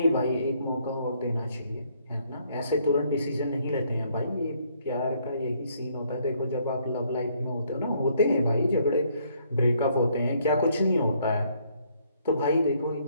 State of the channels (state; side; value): inverted; both; correlation -0.68